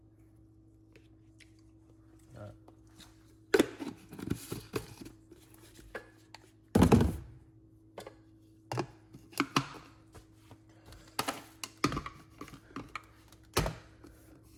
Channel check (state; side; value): identical; both; correlation 1.00